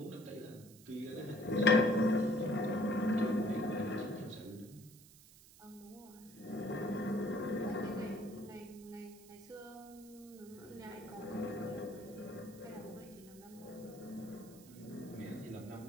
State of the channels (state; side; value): noise; right; hiss, 21 dB below the sound